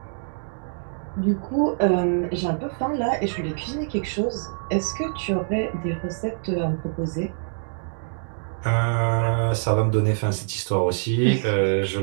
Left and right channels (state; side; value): silent; left; digital silence